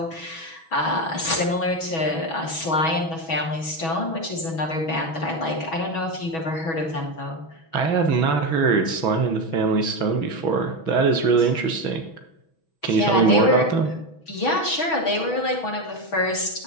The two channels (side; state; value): right; late; 6.2 ms